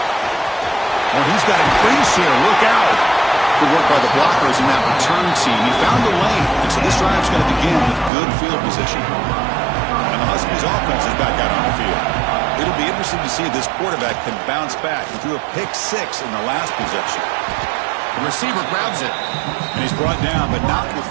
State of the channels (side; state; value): left; drops out; at 8.1 s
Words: Oh, he's got a crease here. Look out. Good work by the blockers in that return team. He found the lane, and so this drive's going to begin with good field position. And the Huskies offense is back out on the field. It'll be interesting to see if this quarterback can bounce back. He threw a pick six in the last possession. The receiver grabs it, and he's brought down, but not